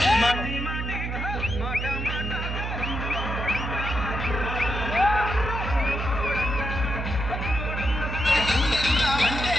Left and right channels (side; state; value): right; noise; hum, 4 dB below the sound